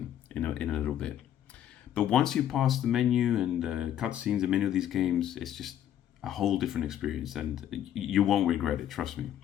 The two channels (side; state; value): right; quieter; 10.8 dB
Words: in a little bit. But once you pass the menu and cutscenes in many of these games, it's just a whole different experience and you won't regret it, trust me.